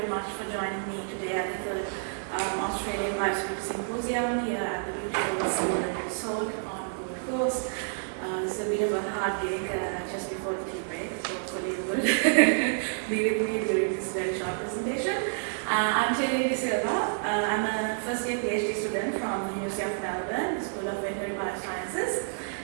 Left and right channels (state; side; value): silent; left; digital silence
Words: much for joining me today at the Australian Biosecurity Symposium here at the Beach Resort on Gold Coast. It's a bit of a hard day just before the tea break, so hopefully you will be with me during this very short presentation. I'm Terry Silva. I'm a first year PhD student from the University of Melbourne, School of Veterinary Biosciences,